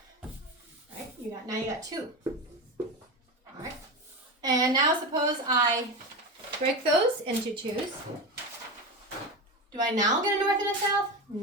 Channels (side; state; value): both; normal; correlation 0.21